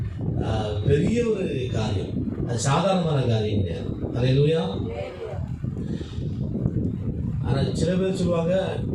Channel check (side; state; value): both; identical; correlation 1.00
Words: பெரிய ஒரு காரியம். அது சாதாரணமான காரியம் கிடையாது. அல்லேலூயா. ஆனால் சில பேர் சொல்லுவாங்க,